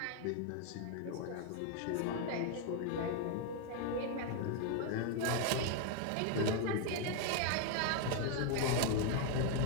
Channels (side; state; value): both; different; correlation 0.00